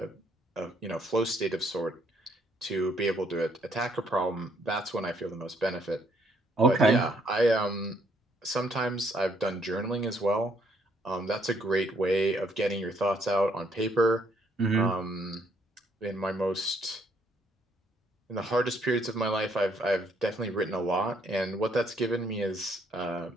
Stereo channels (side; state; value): both; normal; correlation 0.68